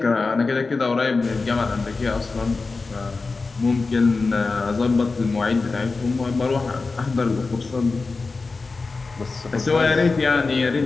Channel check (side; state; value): right; quieter; 4.0 dB